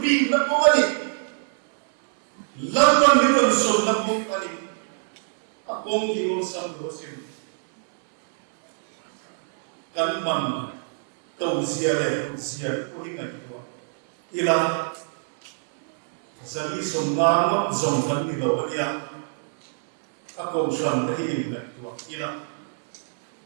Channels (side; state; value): left; silent; digital silence